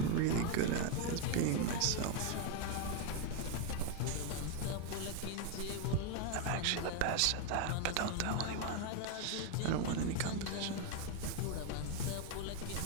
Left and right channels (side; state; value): both; different; correlation 0.01